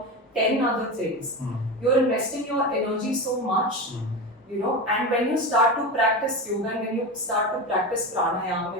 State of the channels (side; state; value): both; normal; correlation 0.22